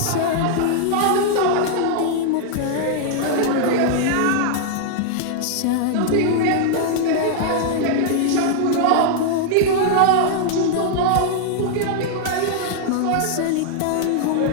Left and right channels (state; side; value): different; both; correlation -0.01